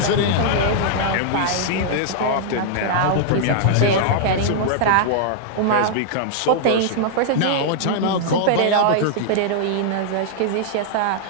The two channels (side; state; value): both; different; correlation -0.01